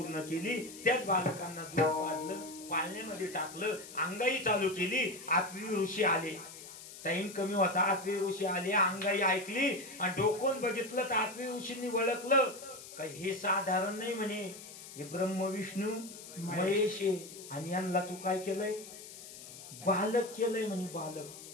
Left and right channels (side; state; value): left; noise; hiss, 14 dB below the sound